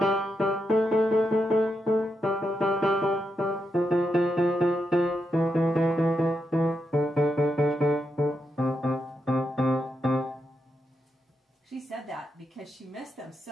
She said that because she missed them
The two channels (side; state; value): both; normal; correlation 0.84